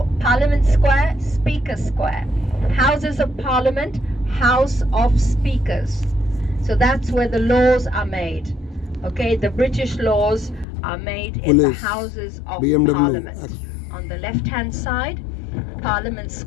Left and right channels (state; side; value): drops out; right; at 10.7 s